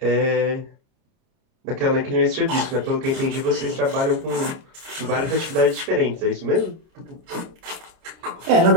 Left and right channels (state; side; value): late; left; 30 ms